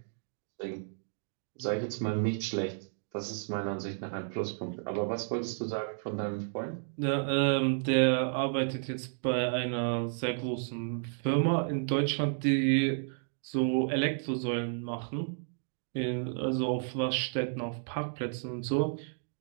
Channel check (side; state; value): left; silent; digital silence